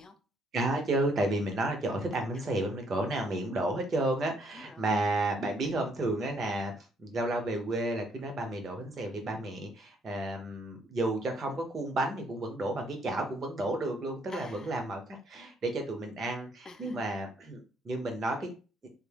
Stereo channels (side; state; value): both; normal; correlation 0.69